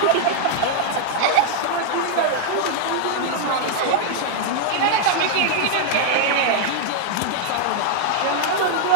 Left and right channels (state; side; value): different; both; correlation -0.01